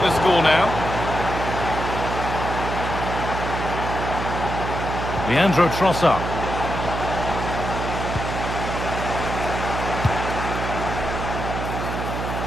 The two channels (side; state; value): right; noise; hum, 4 dB below the sound